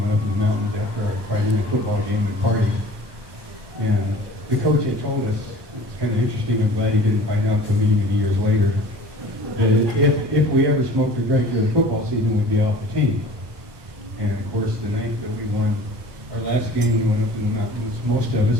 up in the mountains after our Friday night football game and party. And the coach had told us, it's kind of interesting, I'm glad he didn't find out until many, many years later, that if we ever smoked or drank during the football season, we'd be off the team. And of course, the night that we won our last game, we went up in the mountains, most of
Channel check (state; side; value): late; left; 1.2 ms